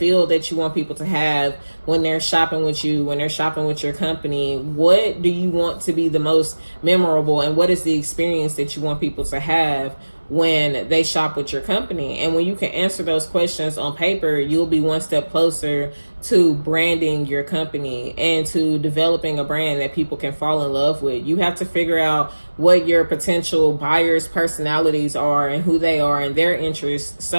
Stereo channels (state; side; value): inverted; both; correlation -1.00